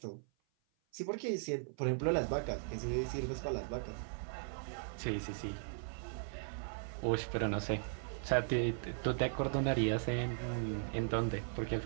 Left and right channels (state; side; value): silent; left; 52 dB below the other